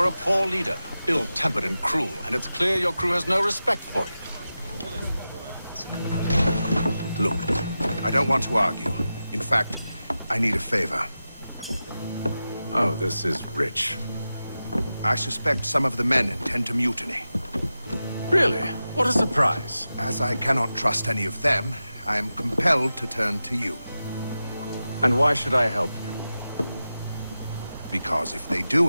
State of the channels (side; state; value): both; inverted; correlation -0.93